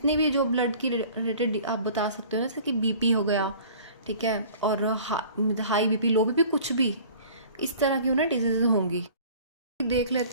भी जो ब्लड की रिलेटेड आप बता सकते हो, जैसे कि बीपी हो गया, ठीक है, और हाई बीपी, लो बीपी, कुछ भी इस तरह की उन्हें डिजीज़ होंगी। देख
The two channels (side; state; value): both; inverted; correlation -0.47